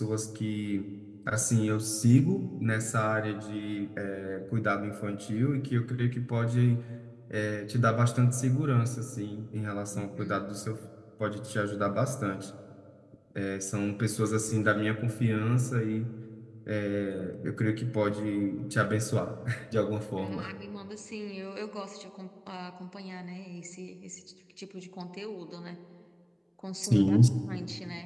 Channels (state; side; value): identical; both; correlation 1.00